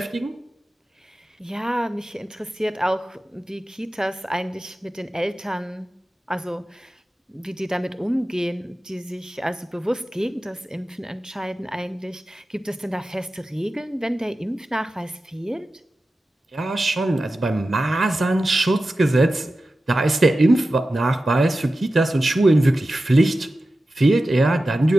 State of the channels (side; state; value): both; normal; correlation 0.94